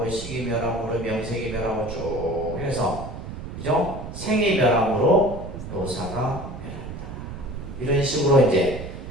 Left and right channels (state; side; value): noise; right; rumble, 10 dB below the sound